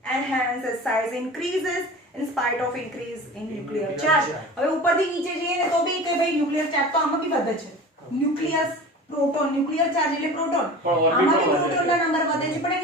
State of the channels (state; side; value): normal; both; correlation 0.36